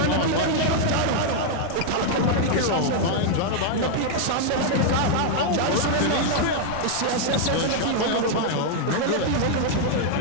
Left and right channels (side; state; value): both; different; correlation 0.00